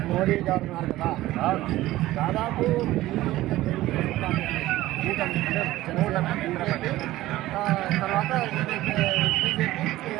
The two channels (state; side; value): quieter; left; 16.3 dB